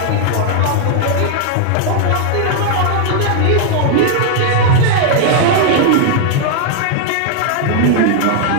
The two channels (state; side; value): different; both; correlation -0.01